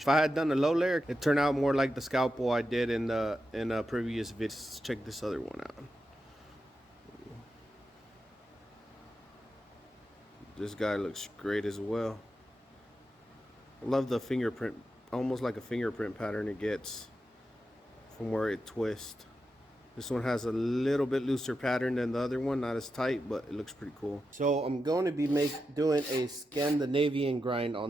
If I had done a low layer, it turned out more like the scalpel I did in a previous video. Let's check this other one out. This guy looks great as well. I love the fingerprint, almost like a fingerprint pattern it gets from where it twists. This one has a little bit looser pattern than the other one, not as tight, but it looks pretty cool. So I'm going to be doing a Scandinavian grind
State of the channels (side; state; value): both; normal; correlation 0.88